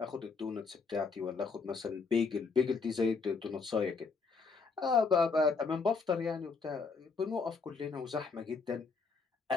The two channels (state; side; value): quieter; right; 4.7 dB